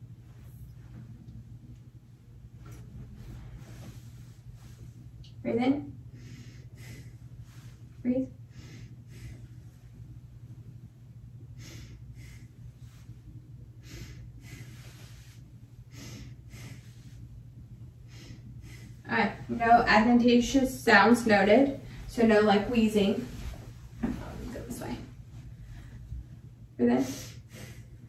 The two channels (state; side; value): identical; both; correlation 1.00